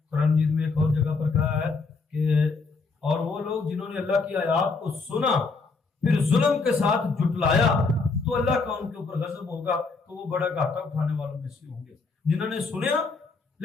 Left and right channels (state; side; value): quieter; right; 4.2 dB